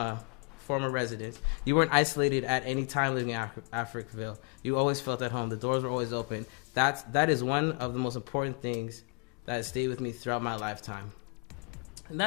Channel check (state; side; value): quieter; right; 34.0 dB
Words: former residents. You weren't isolated at any time living in Africville. You always felt at home. The doors were always open. That is one of the most important things that has stayed with me throughout my lifetime. And